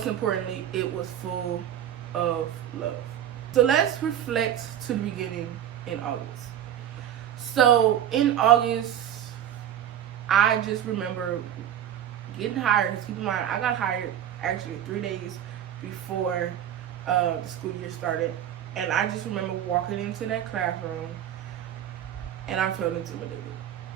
importantly, it was full of love. So let's reflect to the beginning in August. So in August, I just remember getting hired. Keep in mind, I got hired actually 3 days before the school year started, and I just remember walking into that classroom and I felt intimidated.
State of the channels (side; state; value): left; quieter; 10.5 dB